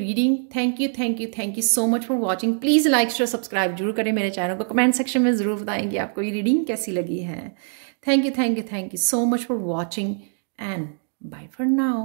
Thank you, thank you, thank you so much for watching. Please like share subscribe जरूर करें मेरे चैनल को। कमेंट सेक्शन में ज़रूर बताएंगे आपको ये रीडिंग कैसी लगी है। Thank you, thank you, thank you so much for watching, and bye for now.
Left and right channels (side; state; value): left; silent; 63 dB below the other